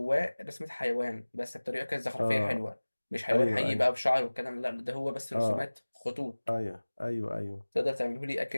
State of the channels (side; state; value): both; inverted; correlation -1.00